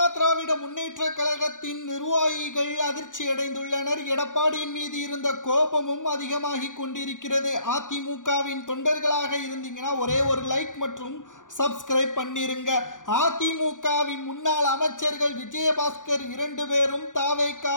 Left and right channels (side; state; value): right; late; 0.87 ms